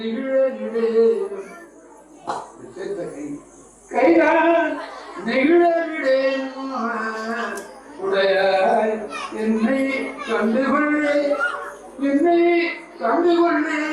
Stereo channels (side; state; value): both; identical; correlation 1.00